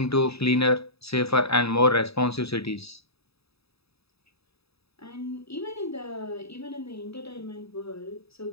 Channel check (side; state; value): right; late; 0.77 ms